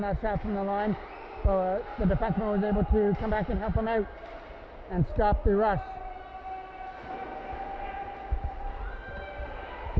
that shot from the line. So the defenseman was able to come back and help him out and stop the rush.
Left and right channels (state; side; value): identical; both; correlation 1.00